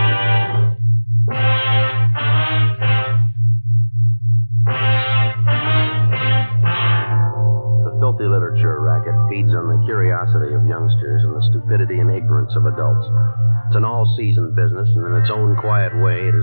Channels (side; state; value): both; inverted; correlation -1.00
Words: Filthy literature racket feeds on the curiosity of youngsters and the stupidity and ignorance of adults. It's an all-season business, and in its own quiet way, it